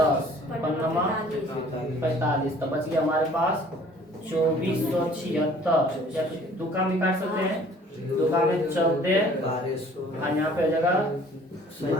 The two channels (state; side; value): normal; both; correlation 0.53